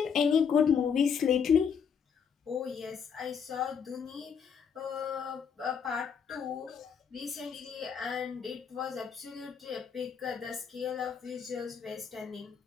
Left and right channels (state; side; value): quieter; right; 6.9 dB